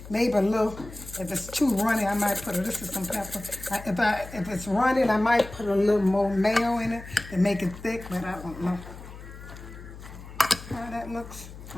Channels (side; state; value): left; noise; hum, 15 dB below the sound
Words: Maybe a little, if it's too runny, I might put this is some pepper. If it's runny, I might put a little more mayo in it to make it thick, but I don't know how that looks.